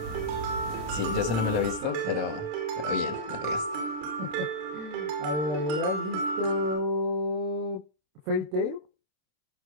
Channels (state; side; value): late; left; 27 ms